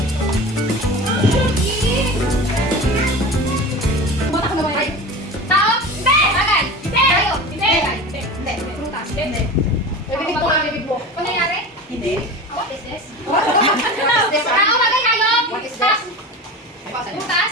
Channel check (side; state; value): both; normal; correlation 0.32